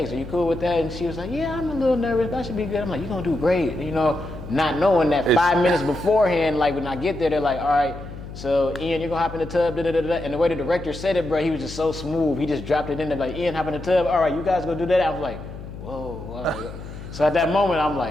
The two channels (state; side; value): noise; left; hum, 12 dB below the sound